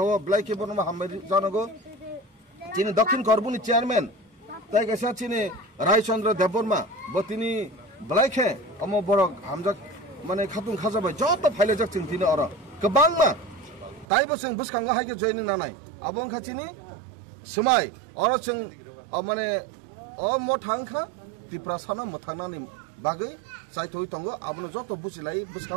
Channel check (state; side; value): drops out; left; at 14.1 s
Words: ब्लाइके बरनमा हामबाय जानांगौ चिनि दक्षिण करबुनि चेयरमैन ताइ कैसा चिनि रायचंद्र देबबर्मा बतिनि ब्लाइके अम बरक हामजाक माने खातुं खाजाबाय जत फाइलेजाक जों तिनि अर गोबांमा ताइबो जों बुसखांगा हायके जॉइनिं नानाय आबों खाथिनि समाय अर जों माने अ मथांखा त्रिपुरा सानो मथांनानि बागै साइथoi तंगो आबनो जत बुसिलाय